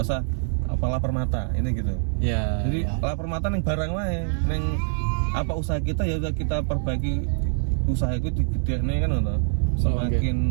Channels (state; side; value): silent; left; digital silence